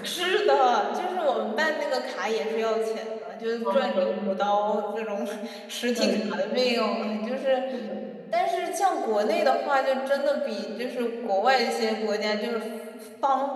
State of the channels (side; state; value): both; identical; correlation 1.00